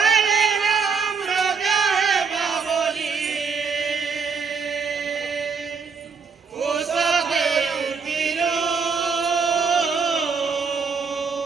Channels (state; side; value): quieter; left; 5.4 dB